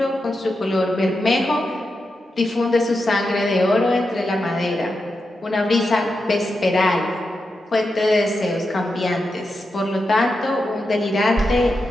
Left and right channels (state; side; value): normal; both; correlation 0.88